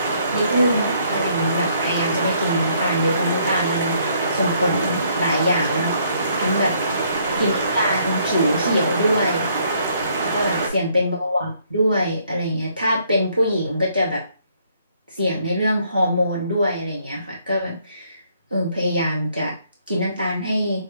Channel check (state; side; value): inverted; both; correlation -0.67